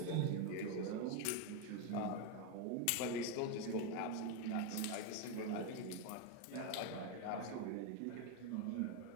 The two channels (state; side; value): different; both; correlation 0.02